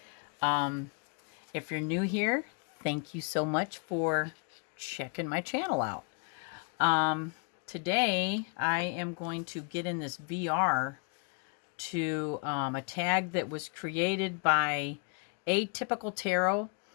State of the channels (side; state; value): right; quieter; 37.7 dB